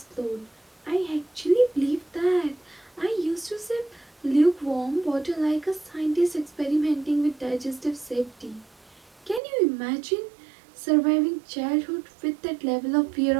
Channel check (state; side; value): drops out; left; at 9.4 s